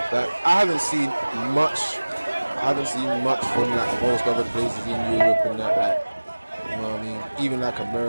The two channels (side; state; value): both; inverted; correlation -1.00